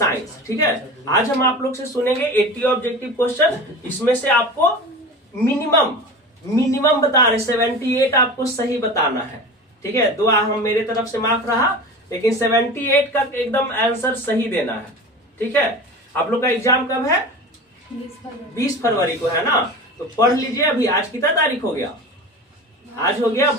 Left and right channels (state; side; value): normal; both; correlation 0.33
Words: ठीक है, आज हम आप लोग से सुनेंगे 80 ऑब्जेक्टिव क्वेश्चन। इसमें से आपको मिनिमम बता रहे 78 आपको सही बताना है। ठीक है, दुआ हम मेरे तरफ से माफ रहा, लेकिन 78 का एकदम आंसर सही देना है। ठीक है, आप लोग का एग्जाम कब है? 20 फरवरी को है ना। तो पढ़ लीजिए। अभी आज कितना तारीख हो गया? आज हो गया